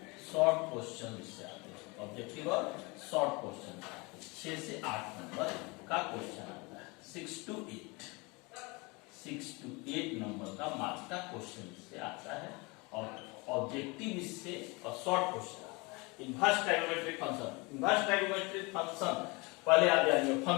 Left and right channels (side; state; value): right; quieter; 27.0 dB